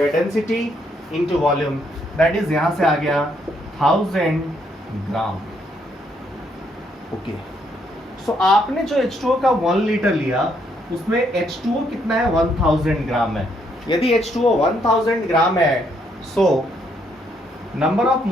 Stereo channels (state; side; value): normal; both; correlation 0.73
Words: density into volume, that is यहां से आ गया 1000 ग्राम। ओके, सो आपने जो H2O का 1 लीटर लिया उसमें H2O कितना है, 1000 ग्राम है। यदि H2O 1000 ग्राम है, so number of